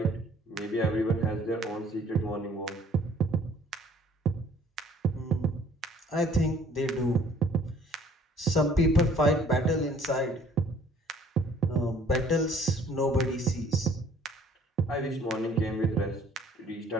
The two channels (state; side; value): normal; both; correlation 0.56